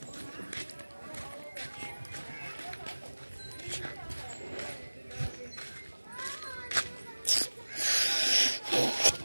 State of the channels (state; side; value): inverted; both; correlation -1.00